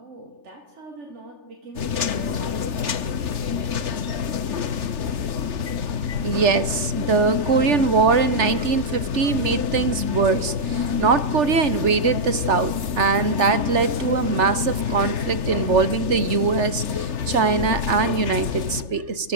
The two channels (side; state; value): left; late; 3.4 ms